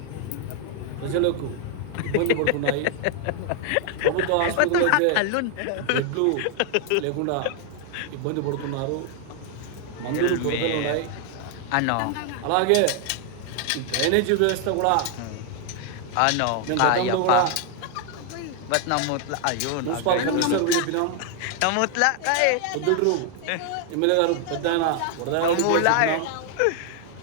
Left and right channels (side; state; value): both; different; correlation 0.00